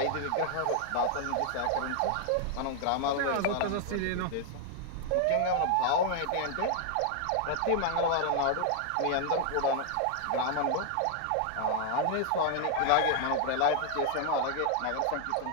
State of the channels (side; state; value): both; different; correlation 0.00